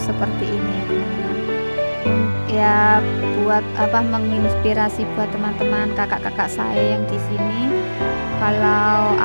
seperti ini ya teman-teman. Ya buat menginspirasi buat teman-teman kakak-kakak saya yang di sini, kalau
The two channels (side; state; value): both; inverted; correlation -1.00